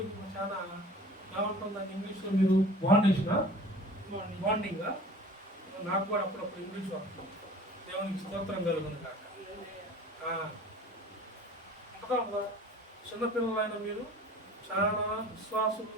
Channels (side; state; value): both; normal; correlation 0.44